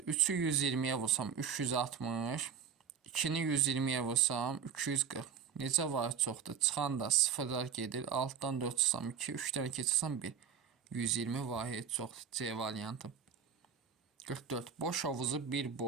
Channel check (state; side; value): quieter; left; 7.3 dB